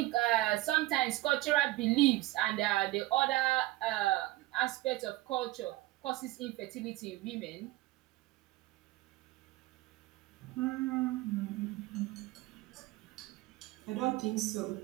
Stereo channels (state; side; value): quieter; left; 18.1 dB